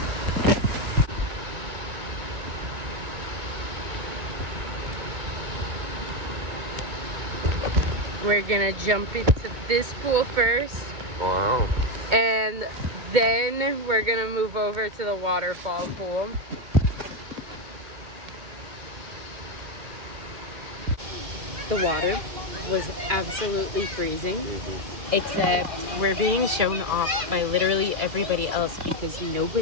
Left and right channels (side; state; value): left; late; 2.2 ms